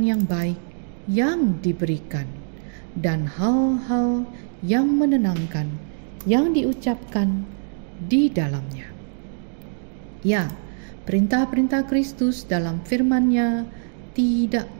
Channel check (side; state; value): left; silent; digital silence